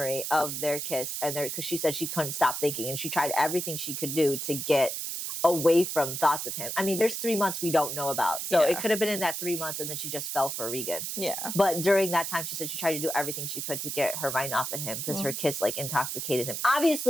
of their kiss, and because she said she couldn't stop thinking, and she tried everything she could do to get away from thoughts of him. I mean, there's 3 months we don't know about, so it could have been in that 3 months, and then she just fell for Regan. Yeah. But during that time, she said she tried to do everything she could to get her mind off of him because her kiss like intoxicated him.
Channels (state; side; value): noise; right; hiss, 4 dB below the sound